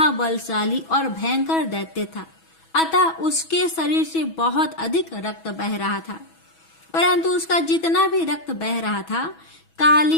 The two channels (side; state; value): right; late; 6.1 ms